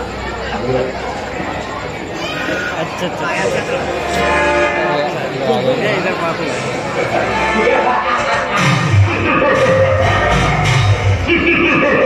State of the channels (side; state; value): both; identical; correlation 1.00